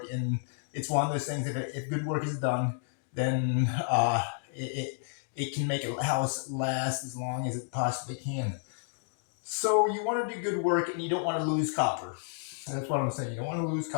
And it's one of those things, if good work is done, then it can make a house last as long as it possibly can. So you want to do good work and you don't want to lose copper. That's what I'm saying. You don't want to lose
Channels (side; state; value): right; silent; digital silence